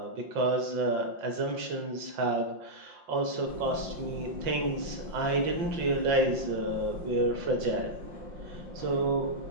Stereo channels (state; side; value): late; left; 5.7 ms